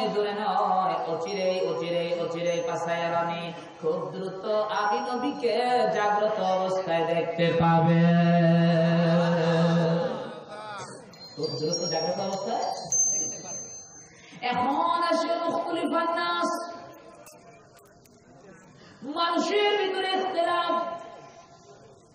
অচিরেই পাসায়ারানি, খুব দ্রুত আমি নবীকে জাগ্রত অবস্থায় দেখতে পাবে। খুব দ্রুত জাগ্রত অবস্থায়। এখন আসে মুখতালিফান নাস, মানুষের ভিতরে ইখতিলাফ।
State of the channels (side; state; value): both; identical; correlation 1.00